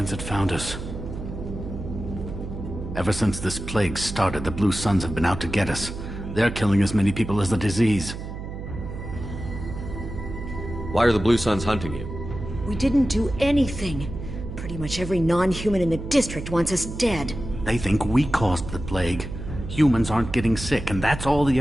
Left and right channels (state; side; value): noise; right; hum, 8 dB below the sound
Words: had found us. Ever since this plague started, the Blue Suns have been out to get us. They're killing as many people as the disease. Why are the Blue Suns hunting you? We didn't do anything. Pretty much every non-human in the district wants us dead. They think we caused the plague. Humans aren't getting sick, and that's all the